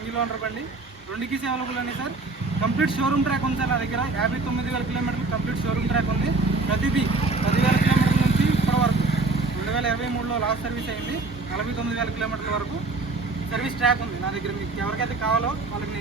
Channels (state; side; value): quieter; left; 3.6 dB